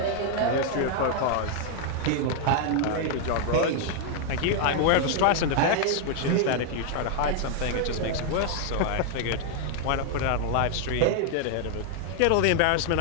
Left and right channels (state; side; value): different; both; correlation 0.00